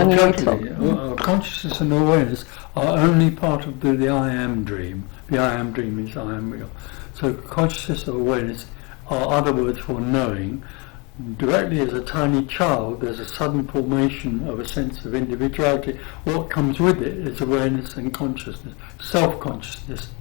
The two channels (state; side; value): quieter; right; 30.3 dB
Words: totally. Consciousness and awareness are only part of the I am dream. The I am dream is I am real. So consciousness or awareness are other words for knowing. Directly as a tiny child, there's a sudden formation of a sense of individuality. What comes with it is awareness and consciousness. Self-consciousness